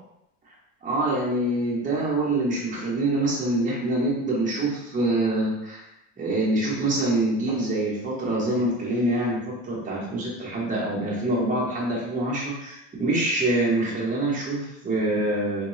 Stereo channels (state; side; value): normal; both; correlation 0.34